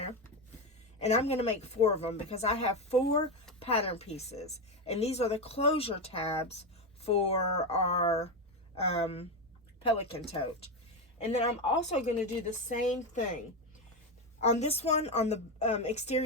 And I'm going to make 4 of them because I have 4 pattern pieces. And these are the closure tabs for our pelican tote. And then I'm also going to do the same thing. On this one, on the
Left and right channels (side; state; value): both; normal; correlation 0.12